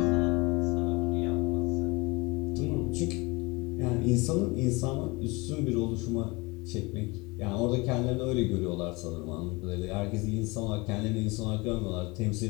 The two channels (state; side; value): quieter; right; 25.2 dB